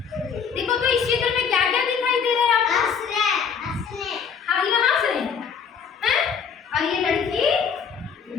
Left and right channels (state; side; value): quieter; right; 6.6 dB